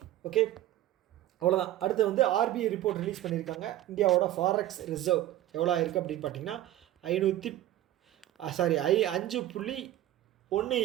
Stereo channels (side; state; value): left; quieter; 13.9 dB